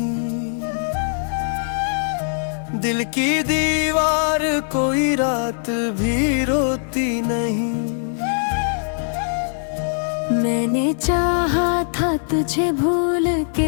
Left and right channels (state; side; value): silent; right; digital silence